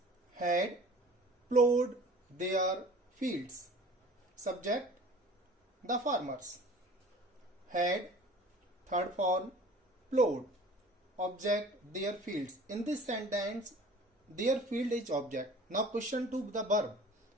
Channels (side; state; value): both; normal; correlation 0.46